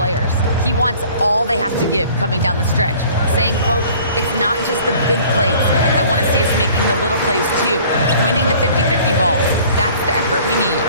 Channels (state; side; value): inverted; both; correlation -0.51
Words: He wants all they have to give coming down the stretch, saying, quote, it's not just the big plays. I want to see us making the little plays too, winning the 50-50 ball. That's the effort we need.